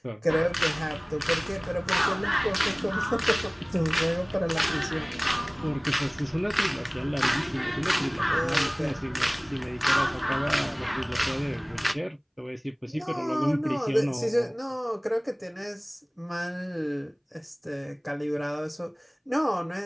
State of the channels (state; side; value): identical; both; correlation 1.00